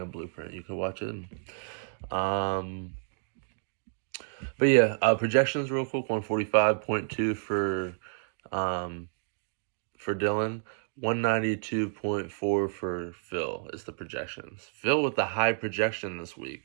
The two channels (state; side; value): silent; left; digital silence